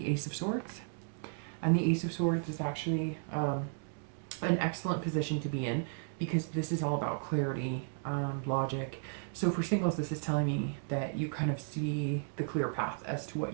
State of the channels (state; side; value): silent; left; digital silence